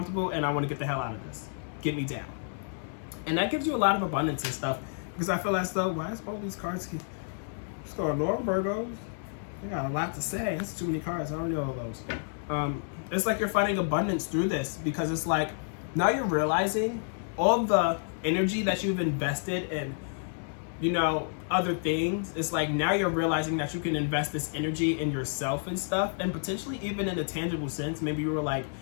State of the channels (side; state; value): right; silent; digital silence